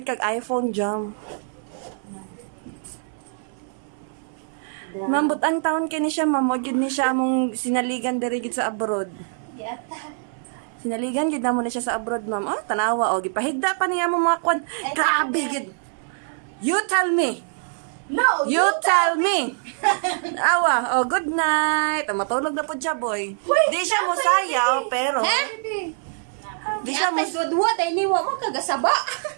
kag iPhone jam. Mambot ang taon kini siya, ma'am. Wag yun ni siya among sinaligan diri gid sa abroad. Sinaligan gid namo ni siya sa abroad, ma'am. Oh, tanawa og gipahigda pa niya mo mga kwan. Grabe gid. You tell me. No! You tell me. Awa, oh good night. Matulog na po siya, boy. Di siya mo sayaw, pero di siya mo Ay, niwa mo kagasaba.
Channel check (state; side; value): silent; left; 63 dB below the other